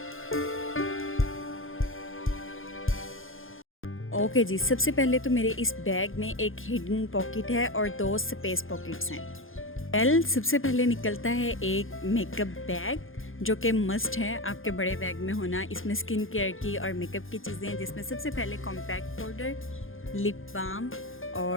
ओके जी, सबसे पहले तो मेरे इस बैग में एक हिडन पॉकेट है और 2 स्पेस पॉकेट्स हैं। सबसे पहले निकलता है एक मेकअप बैग जो कि मस्ट है आपके बड़े बैग में होना। इसमें स्किन केयर की और मेकअप की चीज़ें हैं, जिसमें सबसे पहले कॉम्पैक्ट पाउडर, लिप बाम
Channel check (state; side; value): late; right; 0.59 ms